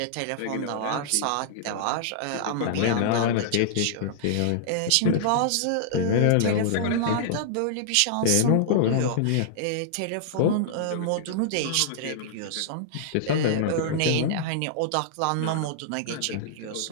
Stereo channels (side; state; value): both; different; correlation -0.01